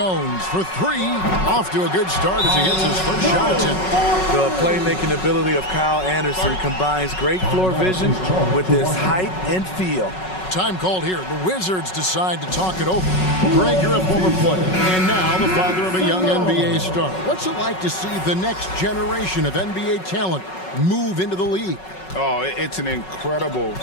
for 3. Off to a good start as he hits his first shot attempt. The playmaking ability of Kyle Anderson combines great floor vision with his height and feel. Time called here. The Wizards decide to talk it over. Greg, you're a former player, and now the father of a young NBA star. What's it like to see the next generation of NBA talent move into the league? Oh, it's an incredible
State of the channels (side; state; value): right; late; 5.4 ms